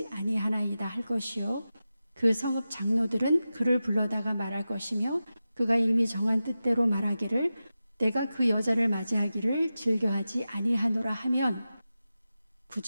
아니하나이다 할 것이요 그 성읍 장로들은 그를 불러다가 말할 것이며 그가 이미 정한 뜻대로 말하기를 내가 그 여자를 맞이하기를 즐겨하지 아니하노라 하면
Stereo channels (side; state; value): both; inverted; correlation -0.93